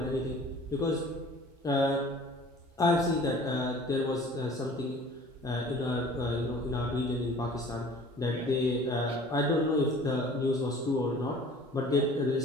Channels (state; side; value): normal; both; correlation 0.47